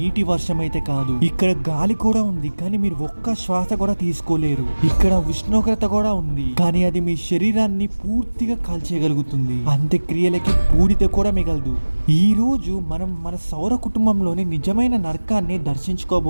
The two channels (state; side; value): inverted; both; correlation -1.00